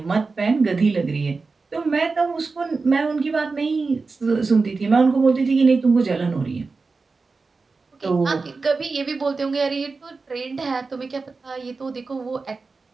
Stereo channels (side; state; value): left; quieter; 4.2 dB